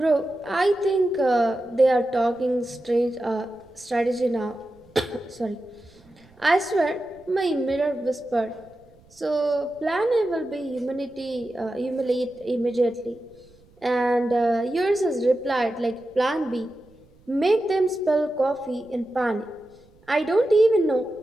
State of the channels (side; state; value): right; noise; rumble, 29 dB below the sound